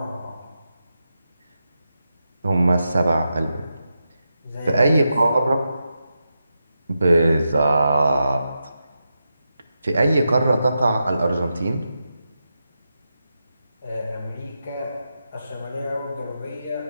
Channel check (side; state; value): both; inverted; correlation -0.88